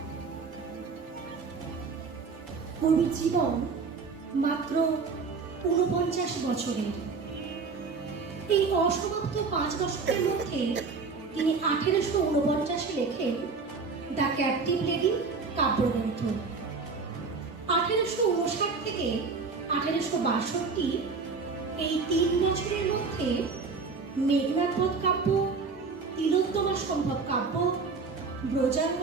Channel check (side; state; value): left; quieter; 4.7 dB